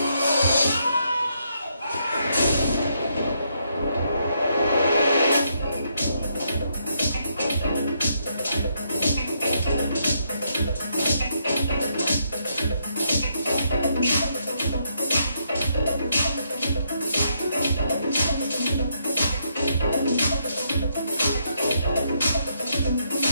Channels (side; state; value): both; inverted; correlation -0.76